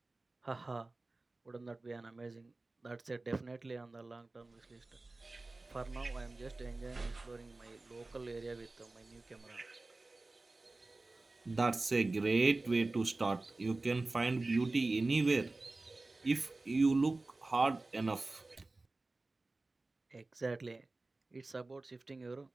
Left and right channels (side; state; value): left; quieter; 3.2 dB